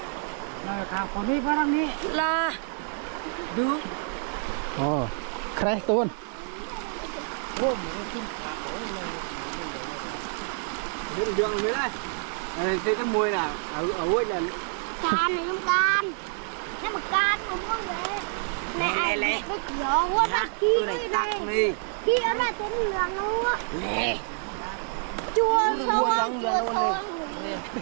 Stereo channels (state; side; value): silent; left; 58 dB below the other